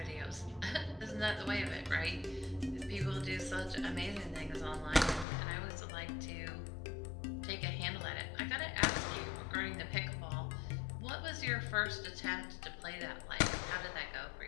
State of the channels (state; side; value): drops out; right; at 5.2 s